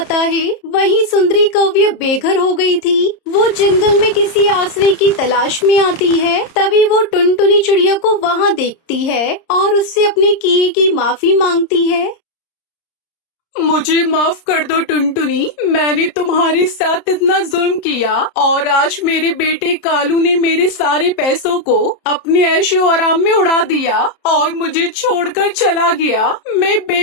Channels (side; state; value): right; late; 30 ms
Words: है। वहीं सुंदरी कौवी बेघर हो गई थी। वो जंगल में किसी आश्रय की तलाश में आती है। तभी वो टुनटुनी चिड़िया को वहाँ देखती है और उससे अपने किए की माफी मांगती है। मुझे माफ कर दो टुनटुनी, मैंने तुम्हारे साथ इतना जुल्म किया और आज मेरे बेटे कालू ने मेरे सारे पैसों को अपने ऐशो आराम में उड़ा दिया और मुझे छोड़कर चला गया। मैं